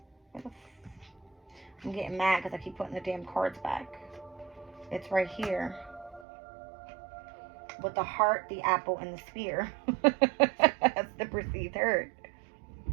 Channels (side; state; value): left; drops out; at 6.2 s